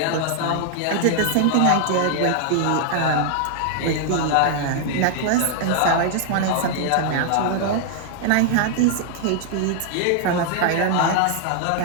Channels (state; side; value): different; both; correlation 0.00